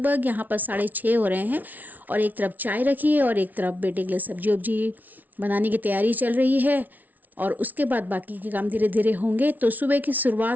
यहाँ पर 6:30 हो रहे हैं। और एक तरफ चाय रखी है और एक तरफ बेटे के लिए सब्जी वब्जी बनाने की तैयारी चल रही है। और उसके बाद बाकी के काम धीरे धीरे होंगे। तो सुबह की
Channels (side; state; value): left; late; 0.079 ms